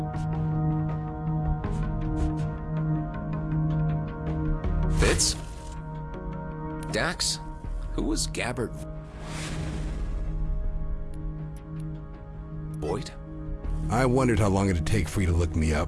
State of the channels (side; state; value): both; identical; correlation 1.00